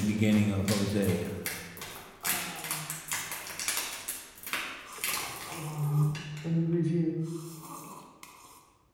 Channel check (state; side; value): identical; both; correlation 1.00